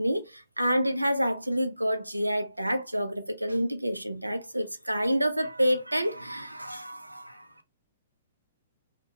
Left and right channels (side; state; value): both; inverted; correlation -0.93